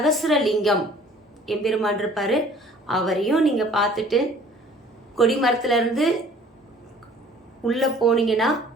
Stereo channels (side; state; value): both; normal; correlation 0.52